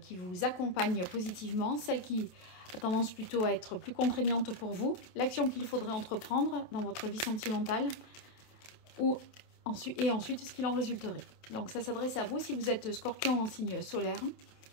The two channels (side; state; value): right; late; 27 ms